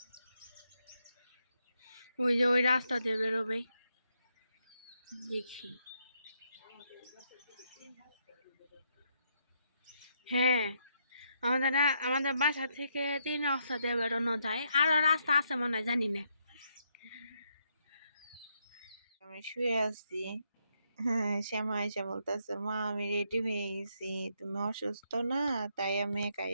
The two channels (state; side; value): inverted; both; correlation -0.77